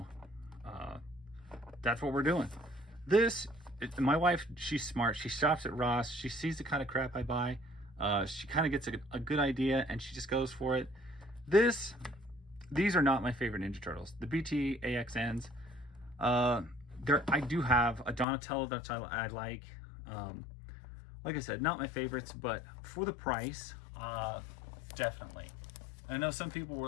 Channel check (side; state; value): right; drops out; at 18.2 s